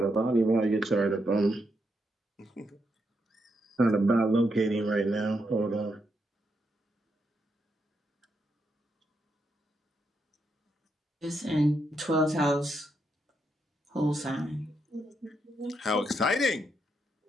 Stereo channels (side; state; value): both; normal; correlation 0.81